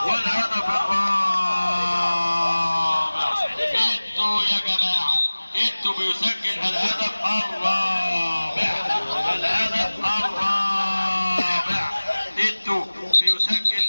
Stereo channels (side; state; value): both; inverted; correlation -1.00